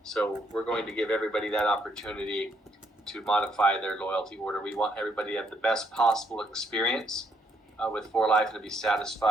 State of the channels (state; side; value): normal; both; correlation 0.72